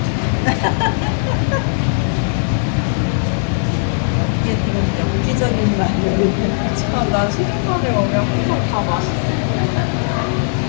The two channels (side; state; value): right; silent; 68 dB below the other